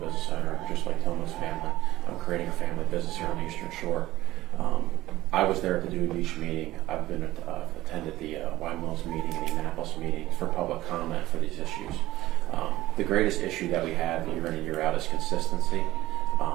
business owner, just like Tillman's family. I'm creating a family business here on the Eastern Shore. I was there at the Dewey Beach meeting. I've been attended the Wine Mills meeting and the Annapolis meeting for public comment for these issues. The greatest issue that we have year in and year out is consistency.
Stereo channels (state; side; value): quieter; left; 16.4 dB